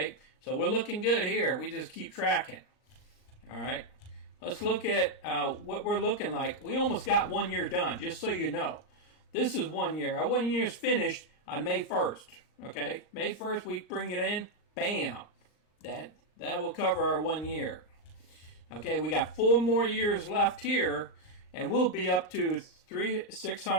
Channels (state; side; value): late; right; 39 ms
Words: so we're looking good here. We just keep tracking. All right, let's look at what we're looking like. We almost got 1 year done, just so you know. This is 1 year. Our 1 year is finished on May 1st. Okay, May 1st we bring it in. Bam, that will cover our 1 year. Okay, we got 4 more years left here, and we'll be up to